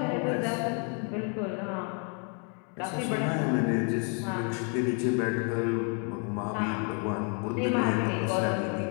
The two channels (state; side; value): quieter; right; 38.8 dB